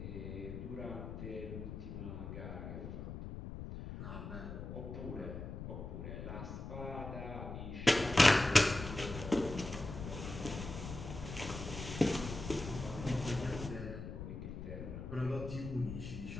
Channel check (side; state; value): left; noise; rumble, 8 dB below the sound